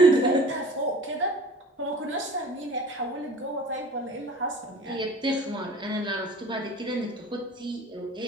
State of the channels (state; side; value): normal; both; correlation 0.44